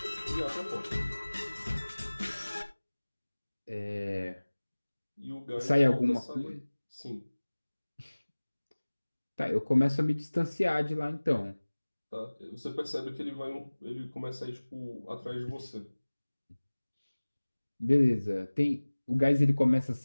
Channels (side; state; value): both; inverted; correlation -1.00